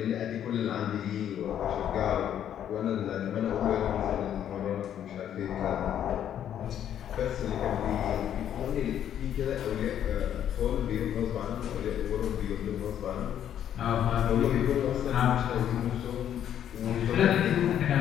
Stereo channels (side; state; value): right; quieter; 10.1 dB